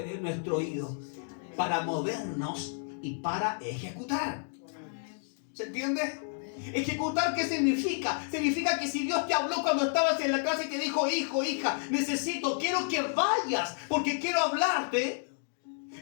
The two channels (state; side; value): silent; right; digital silence